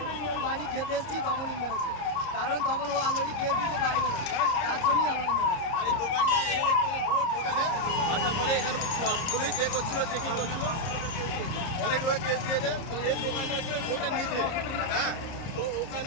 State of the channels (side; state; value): right; late; 30 ms